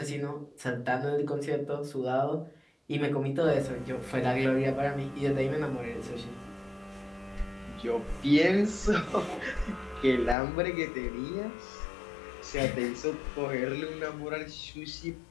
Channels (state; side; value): drops out; right; at 10.4 s